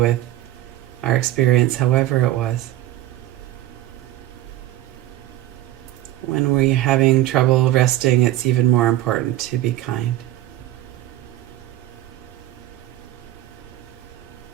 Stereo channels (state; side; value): quieter; left; 14.4 dB